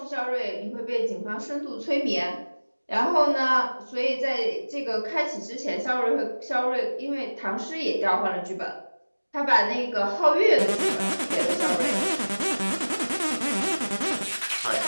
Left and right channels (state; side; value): inverted; both; correlation -1.00